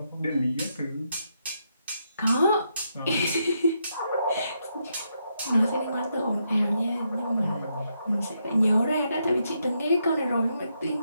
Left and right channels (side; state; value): both; inverted; correlation -0.80